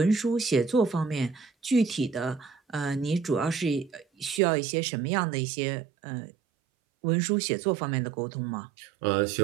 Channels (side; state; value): left; drops out; at 4.4 s